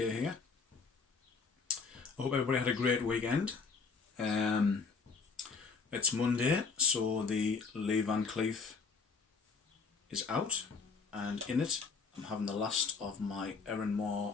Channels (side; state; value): right; quieter; 5.1 dB